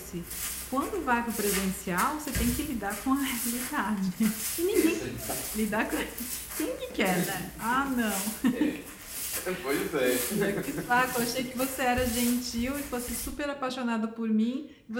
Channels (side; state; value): both; identical; correlation 1.00